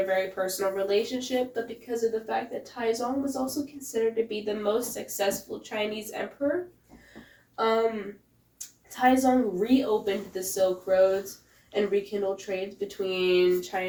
very personal relationship, but because of the fact that Taizong was also considered to be the most successful Chinese emperor. Taizong reopened the Silk Roads and rekindled trades between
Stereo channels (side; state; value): both; identical; correlation 1.00